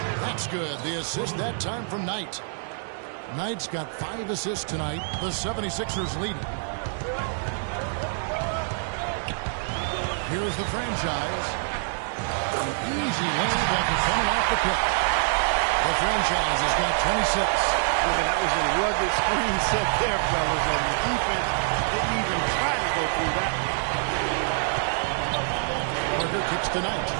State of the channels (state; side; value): silent; left; digital silence